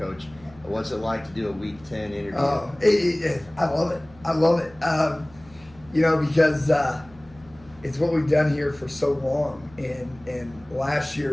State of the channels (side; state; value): right; noise; hum, 24 dB below the sound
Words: What's it like to do a Week 10 interview? I love it. I love it. Because it's what we've done here for so long, and last